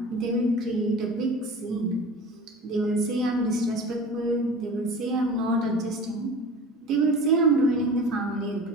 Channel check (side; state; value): both; normal; correlation 0.37